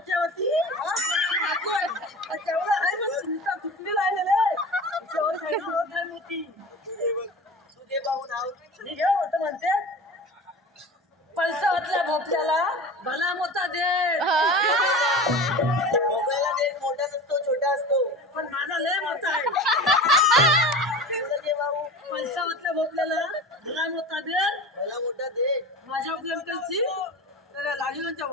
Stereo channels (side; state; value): both; normal; correlation 0.34